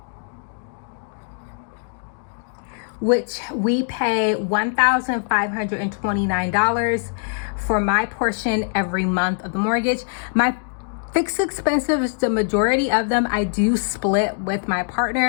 which we pay $1,529 for my portion every month of the mortgage. My fixed expenses, the majority of them I do split with my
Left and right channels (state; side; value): silent; right; digital silence